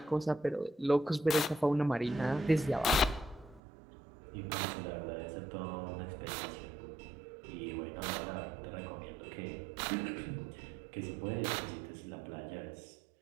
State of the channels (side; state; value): left; drops out; at 3.6 s